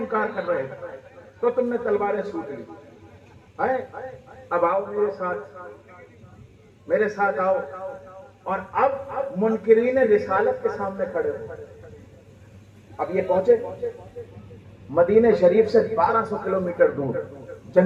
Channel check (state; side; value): identical; both; correlation 1.00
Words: کر رہے تھے، تو تم نے تلواریں سوٹ لی۔ اب آؤ میرے ساتھ آؤ، اور اب منکرین رسالت کے سامنے کھڑے ہو۔ اب یہ پہنچے مدینہ شریف سے 1200 کلومیٹر دور